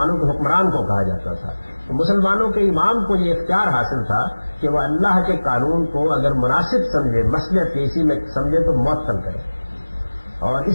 کے حکمران کو کہا جاتا تھا، تو مسلمانوں کے امام کو یہ اختیار حاصل تھا کہ وہ اللہ کے قانون کو اگر مناسب سمجھے، مصلحت اسی میں سمجھے تو معطل کرے، اور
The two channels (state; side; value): inverted; both; correlation -1.00